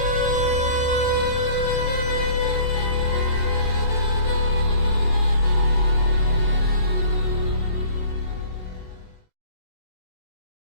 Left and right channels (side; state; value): right; late; 16 ms